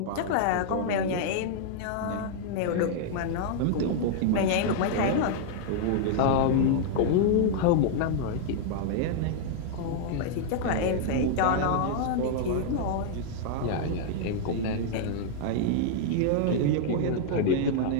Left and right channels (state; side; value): different; both; correlation -0.01